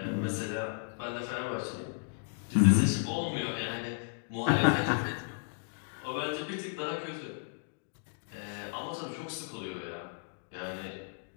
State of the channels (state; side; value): silent; right; digital silence